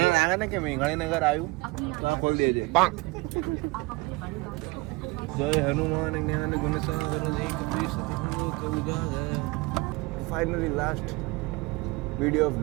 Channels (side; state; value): left; quieter; 24.5 dB